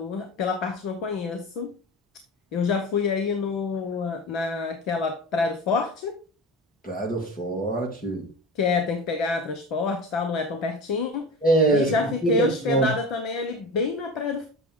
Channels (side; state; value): both; normal; correlation 0.31